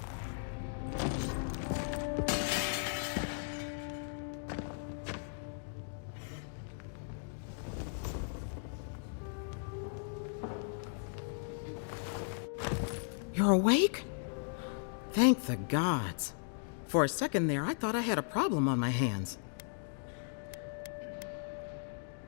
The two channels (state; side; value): silent; right; digital silence